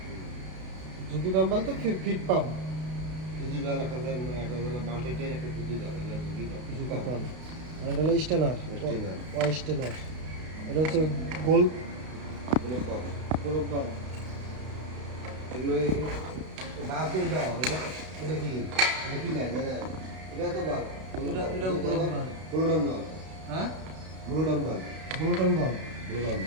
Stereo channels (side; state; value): left; late; 32 ms